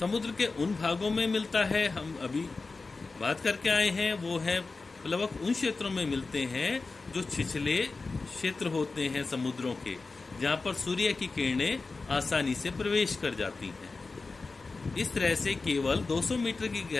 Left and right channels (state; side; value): quieter; right; 3.9 dB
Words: के उन भागों में मिलता है, हम अभी बात करके आए हैं, वो है प्लवक उन क्षेत्रों में मिलते हैं जो छिछले क्षेत्र होते हैं समुद्रों के, जहां पर सूर्य की किरणें आसानी से प्रवेश कर जाती हैं। इस तरह से केवल 200 मीटर की